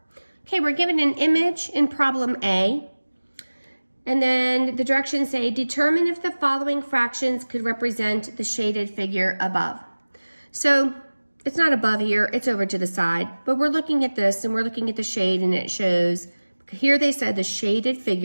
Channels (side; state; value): both; inverted; correlation -1.00